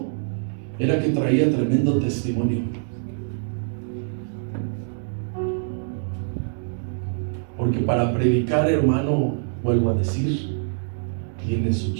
era que traía tremendo testimonio. Porque para predicar, hermano, vuelvo a decir, tiene su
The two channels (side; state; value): left; silent; digital silence